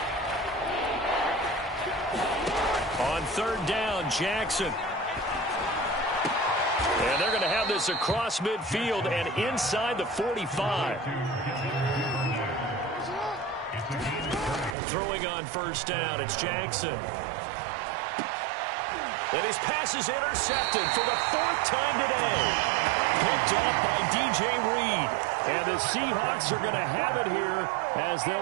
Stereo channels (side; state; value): left; drops out; at 14.8 s